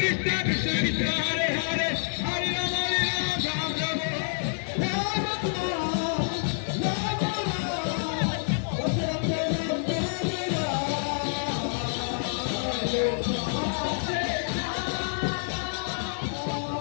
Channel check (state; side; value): silent; right; digital silence